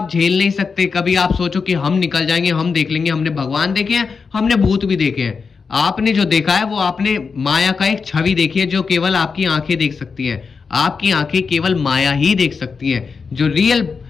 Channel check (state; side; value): quieter; right; 5.2 dB